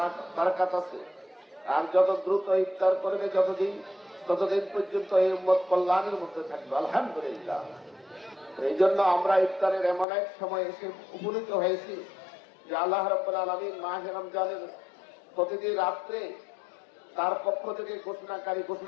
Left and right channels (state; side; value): drops out; right; at 10.1 s